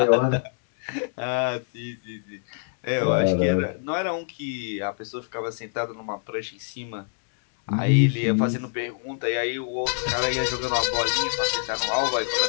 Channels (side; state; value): right; silent; 61 dB below the other